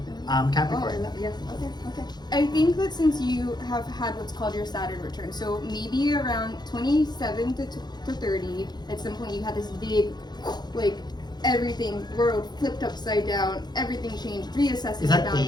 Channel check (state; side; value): late; right; 0.20 ms